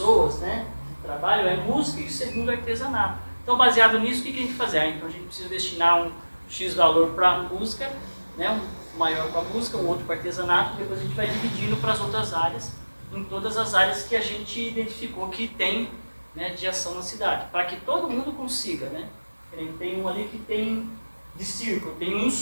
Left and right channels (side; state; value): both; inverted; correlation -1.00